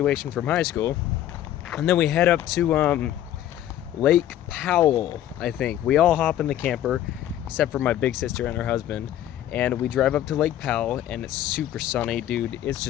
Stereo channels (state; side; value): quieter; right; 12.1 dB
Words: from high school, and then we head up to Lake Powell, I think. We all hop in the camper, except for my big sister and her husband, and we drive up to Lake Powell, and it's super sunny, dude. It's